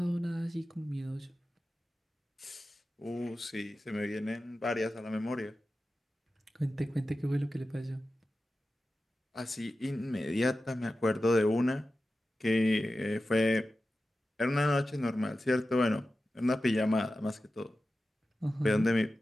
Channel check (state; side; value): normal; both; correlation 0.93